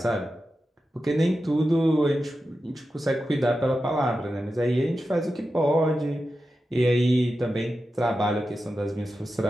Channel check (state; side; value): normal; both; correlation 0.91